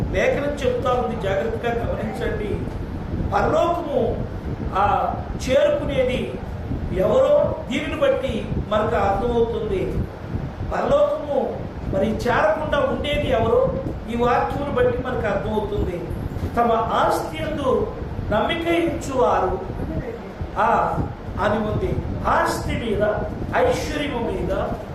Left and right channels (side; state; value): both; identical; correlation 1.00